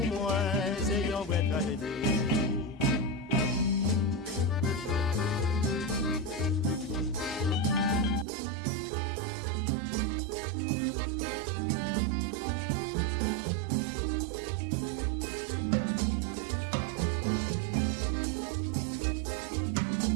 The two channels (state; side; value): drops out; left; at 8.2 s